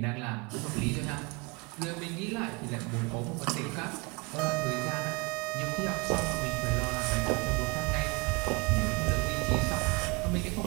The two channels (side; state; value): left; quieter; 27.2 dB